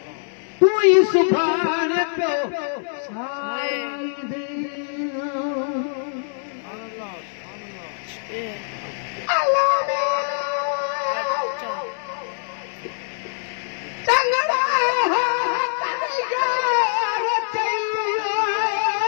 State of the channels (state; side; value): silent; right; digital silence